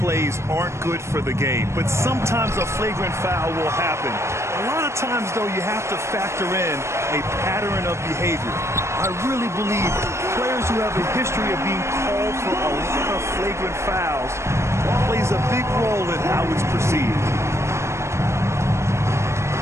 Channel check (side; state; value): left; late; 0.13 ms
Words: aren't good for the game, but sometimes a flagrant foul will happen. A lot of times, though, you have to factor in a pattern of behavior. I really believe players who have a history of being called for a lot of flagrant fouls plays a big role in how it's perceived.